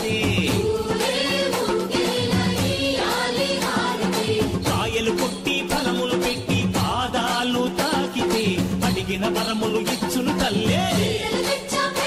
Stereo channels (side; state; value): both; identical; correlation 1.00